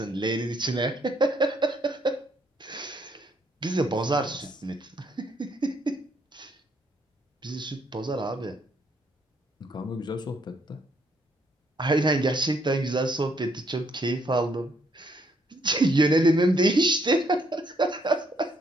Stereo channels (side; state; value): both; normal; correlation 0.70